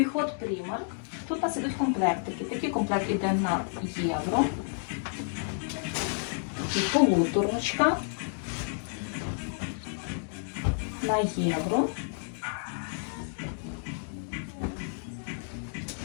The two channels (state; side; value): silent; right; digital silence